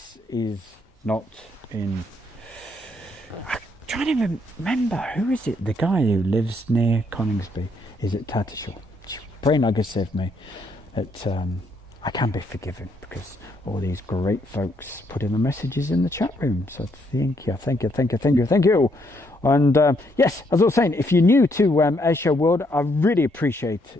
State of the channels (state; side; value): normal; both; correlation 0.73